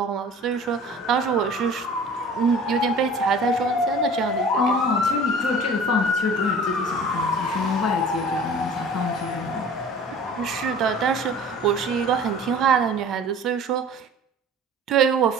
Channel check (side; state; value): both; normal; correlation 0.44